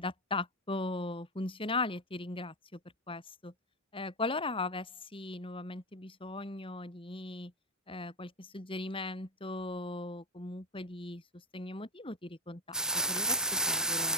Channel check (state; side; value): normal; both; correlation 0.08